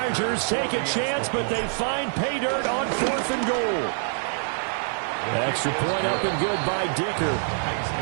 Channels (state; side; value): silent; left; digital silence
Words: take a chance, but they find pay dirt on 4th and goal. Extra point up and good by Dicker.